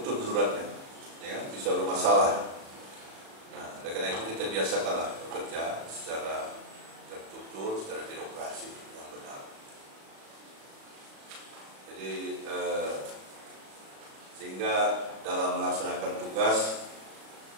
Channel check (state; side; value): late; left; 36 ms